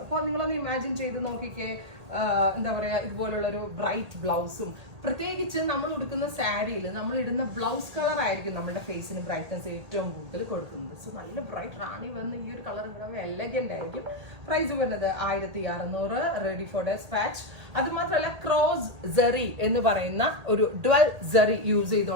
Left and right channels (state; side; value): late; left; 1.8 ms